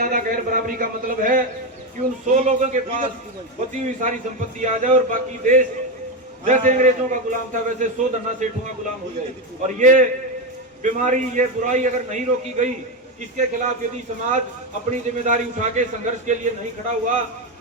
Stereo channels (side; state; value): both; normal; correlation 0.11